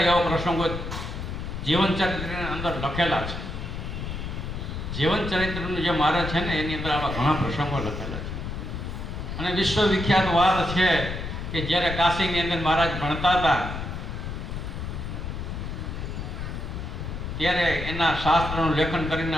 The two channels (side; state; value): left; noise; rumble, 6 dB below the sound